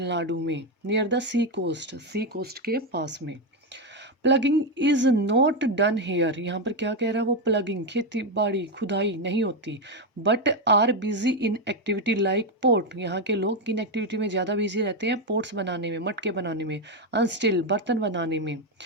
में, नियर द सी कोस्ट के पास में। Plugging is not done here, यहाँ पर क्या कह रहा है वो, प्लगिंग खेती बाड़ी खुदाई नहीं होती। But are busy in activity like port, यहाँ के लोग किन एक्टिविटी में ज़्यादा बिजी रहते हैं, पोर्ट्स बनाने में, मटके बनाने में, अनस्टिल बर्तन बनाने में,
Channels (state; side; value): normal; both; correlation 0.07